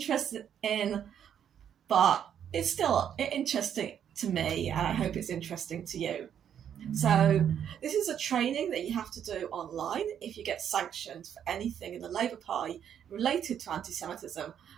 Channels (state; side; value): quieter; left; 9.0 dB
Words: in, but it's still interesting to me, and I hope it's interesting to you. So this is a training that you have to do online if you get sanctioned for anything in the Labour Party related to anti-Semitism